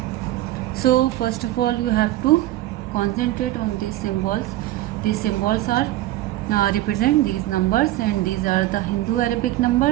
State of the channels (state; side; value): quieter; left; 15.7 dB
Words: so first of all you have to concentrate on these symbols. These symbols are represent these numbers, and these are the Hindu Arabic